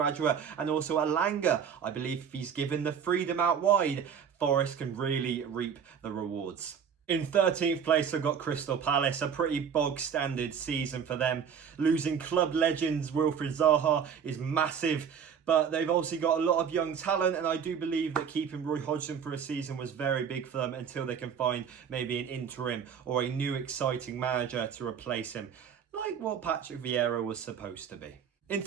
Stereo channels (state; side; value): quieter; left; 7.4 dB